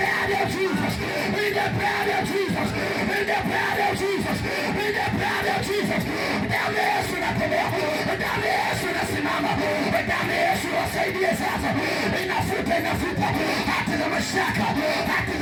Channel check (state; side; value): identical; both; correlation 1.00